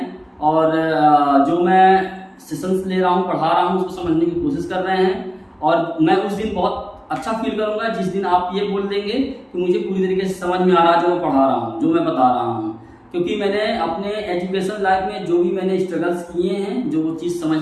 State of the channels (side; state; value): both; identical; correlation 1.00